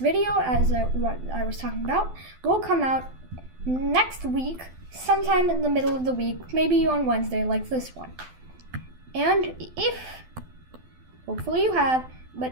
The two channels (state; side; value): late; left; 12 ms